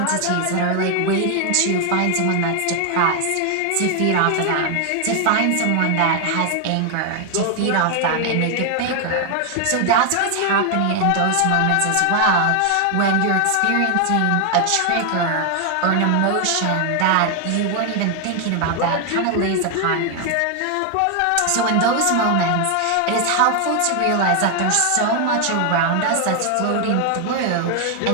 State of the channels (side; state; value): both; different; correlation 0.01